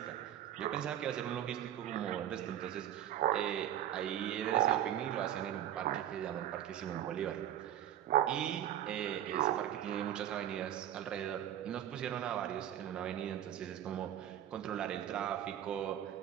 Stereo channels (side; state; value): left; quieter; 11.0 dB